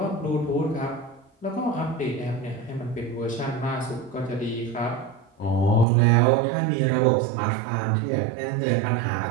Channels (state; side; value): drops out; left; at 5.9 s